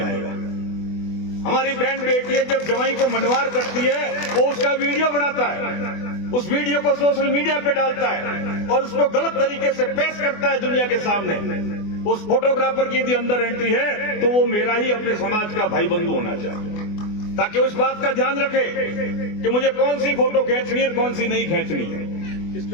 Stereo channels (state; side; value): late; right; 24 ms